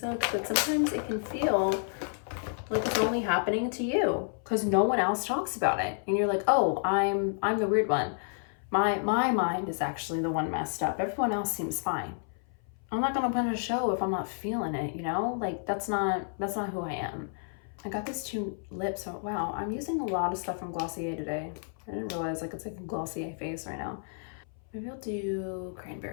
But sometimes it can feel like it's only happening to you because no one else talks about it. And you're like, oh, I'm the weird one. My mind is actually the one messed up. Everyone else seems fine. I'm not gonna put on a show if I'm not feeling it, you know? Like, that's not who I am. I got these two lips. Oh, wow, I'm using a lot of stuff from Glossier today. I didn't realize like it's like a Glossier face right now. Maybe I'll do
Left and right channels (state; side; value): silent; right; 57 dB below the other